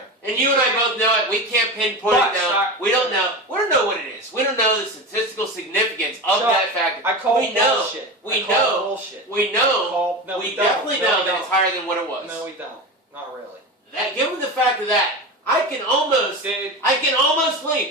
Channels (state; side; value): normal; both; correlation 0.25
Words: And you and I both know it. We can't pinpoint it down. We don't know. We don't know what it is. We don't know the statistical significance of that factor. I call it bullshit. We know. We know. We definitely know that it's higher than what it was. No, we don't. Not really. Given the fact of that, I can almost